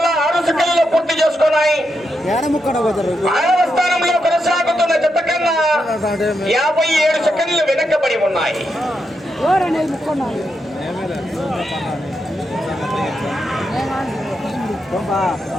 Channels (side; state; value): both; normal; correlation 0.84